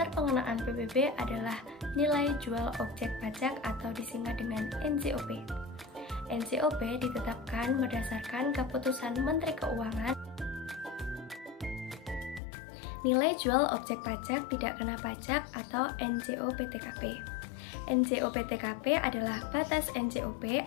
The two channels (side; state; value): right; drops out; at 12.4 s